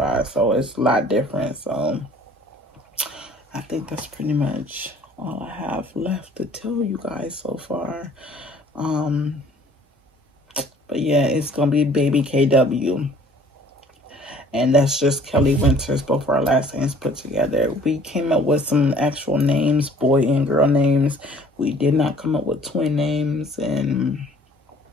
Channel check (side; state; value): both; normal; correlation 0.54